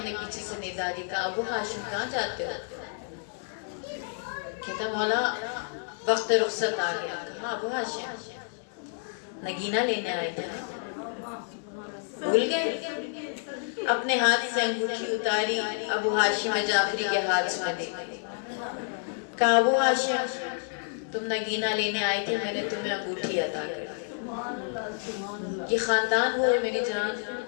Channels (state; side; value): silent; right; digital silence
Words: نے پیچھے سے ندا دی, کہا ابو ہاشم کہاں جاتے ہو؟ کہتا مولا وقت رخصت آ گیا. کہا ابو ہاشم نگینہ لینے آئے تھے, بھول گئے؟ اپنے ہاتھ سے انگوٹھی اتاری, ابو ہاشم جعفری کے ہاتھ میں دی. کہا ابو ہاشم تم نگینہ لینے آئے تھے, میں نے تمہیں انگوٹھی عطا کر دی. یہ خاندان وہ ہے میری جان